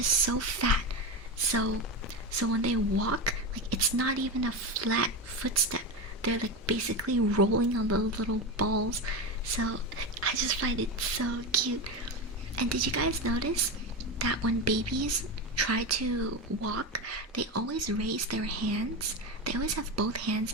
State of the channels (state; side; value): normal; both; correlation 0.17